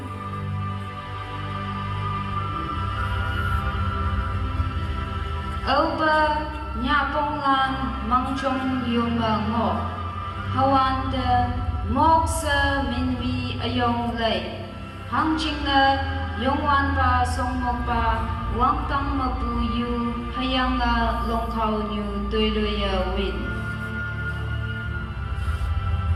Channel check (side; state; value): both; identical; correlation 1.00